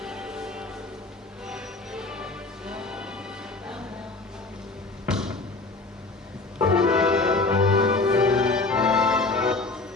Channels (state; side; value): quieter; right; 3.5 dB